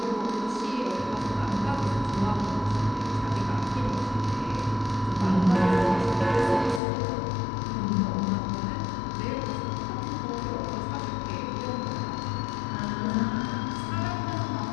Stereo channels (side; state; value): right; drops out; at 6.8 s